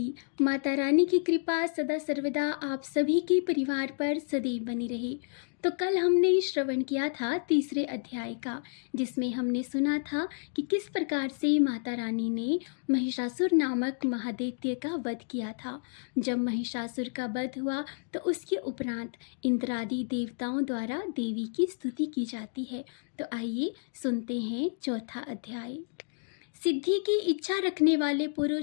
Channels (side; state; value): right; silent; digital silence